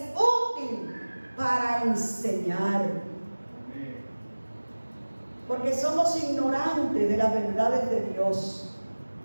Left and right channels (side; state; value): both; inverted; correlation -1.00